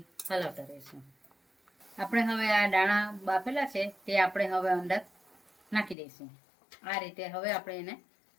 હલાવતા રહીશું. આપણે હવે આ દાણા બાફેલા છે તે આપણે હવે અંદર નાખી દઈશું. આ રીતે હવે આપણે એને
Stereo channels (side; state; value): right; drops out; at 6.0 s